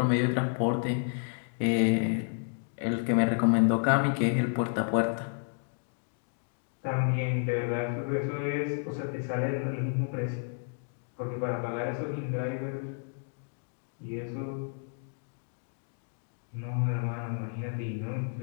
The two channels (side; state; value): right; silent; 57 dB below the other